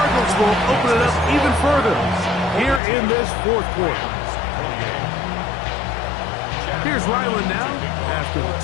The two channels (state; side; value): drops out; right; at 2.8 s